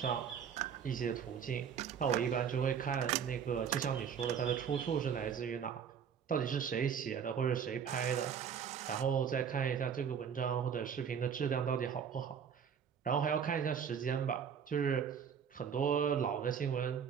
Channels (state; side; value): quieter; left; 7.5 dB